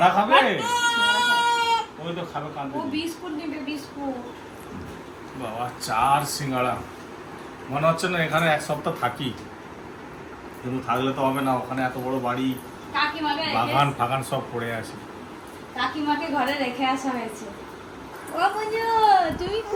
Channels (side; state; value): both; identical; correlation 1.00